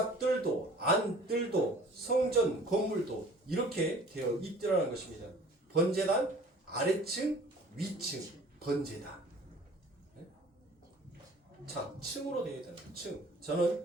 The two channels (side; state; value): both; normal; correlation 0.48